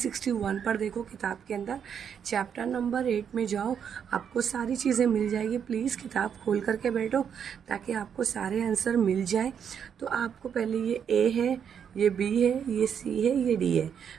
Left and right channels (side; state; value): left; quieter; 7.8 dB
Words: पर देखो किताब के अंदर, चैप्टर नंबर 8 में जाओ, आपको सारी चीज़ें मिल जाएगी। प्लीज़ किताब खोल करके बैठो ताकि आपको सारे आंसर मिल जाए। तो आपको पहले ये ए है, ये बी है, ये सी है, ये डी है।